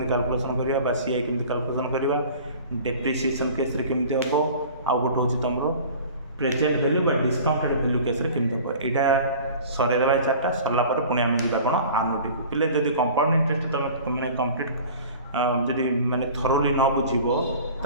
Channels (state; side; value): inverted; both; correlation -0.43